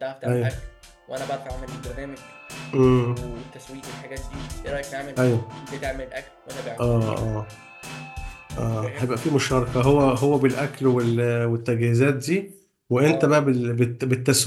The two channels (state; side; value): identical; both; correlation 1.00